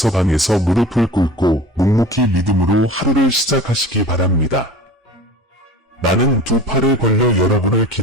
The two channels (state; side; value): normal; both; correlation 0.40